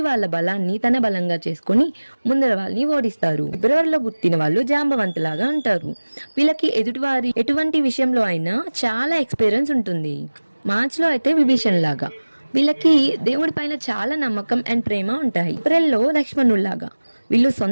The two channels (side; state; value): both; inverted; correlation -1.00